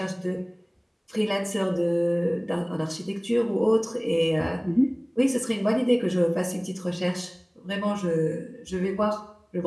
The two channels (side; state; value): both; identical; correlation 1.00